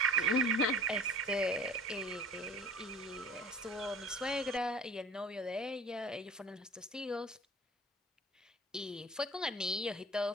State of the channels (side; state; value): both; normal; correlation 0.44